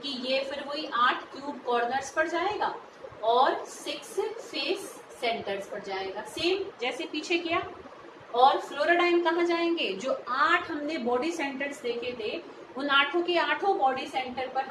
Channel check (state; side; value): identical; both; correlation 1.00